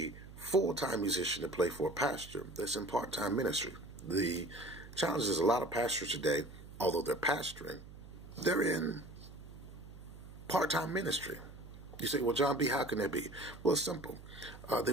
full-time musician to play for a pastor that's in part-time ministry. The challenge is a lot of pastors today, although they're pastoring, they're in part-time ministry. You say, well, John B., how can that be? Well, it's simple. They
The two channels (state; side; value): noise; right; hum, 16 dB below the sound